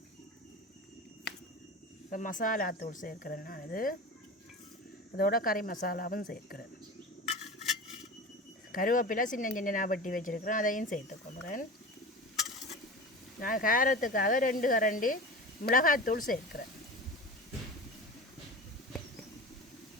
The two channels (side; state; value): both; normal; correlation 0.31